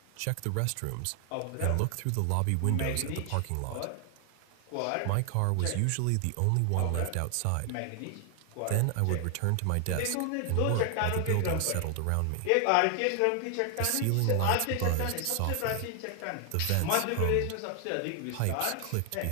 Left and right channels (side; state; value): both; different; correlation 0.00